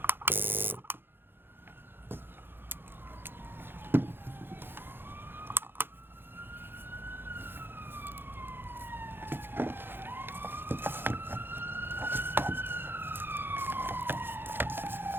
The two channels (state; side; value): late; left; 0.10 ms